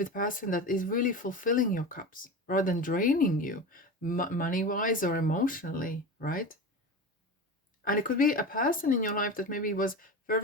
a person that is really fulfilling your cups rather than draining you money-wise or emotionally, right? And it could be a person in your life that maybe was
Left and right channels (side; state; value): both; normal; correlation 0.27